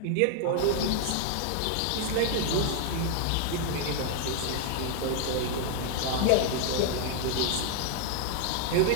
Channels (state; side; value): different; both; correlation 0.00